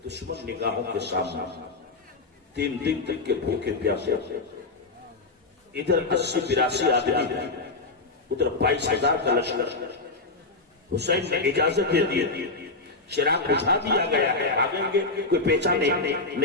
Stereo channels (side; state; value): right; quieter; 3.5 dB